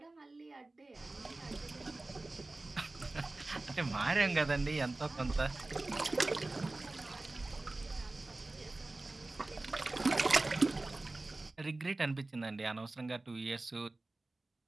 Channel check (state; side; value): quieter; left; 3.0 dB